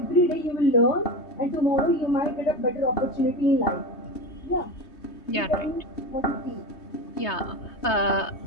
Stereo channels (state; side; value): late; right; 3.2 ms